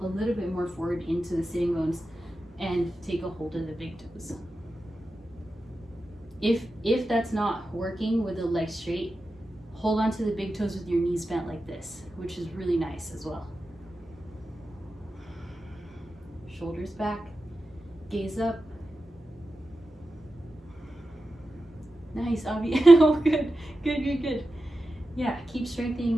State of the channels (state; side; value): normal; both; correlation 0.92